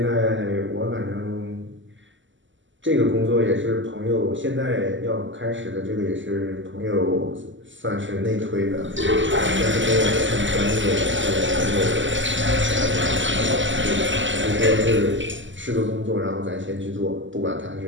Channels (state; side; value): late; left; 0.55 ms